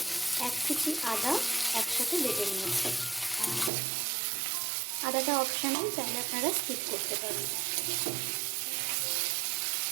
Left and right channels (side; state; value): left; drops out; at 3.7 s